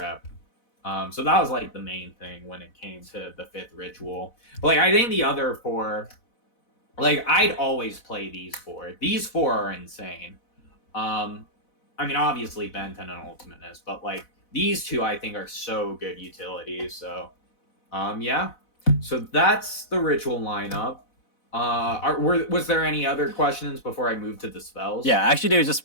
So that was like the main thing when it came to the 5th ritual. But like I think the other 4, like I'd always play these 4. These 4 are insane. I mean obviously Ben 10 and Ultimateness, but like these 2 I think are so good utilities. So yeah. So that's the ritual lineup. Was there any other questions before I move to the spells? Yeah, actually, there's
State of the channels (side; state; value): right; late; 4.0 ms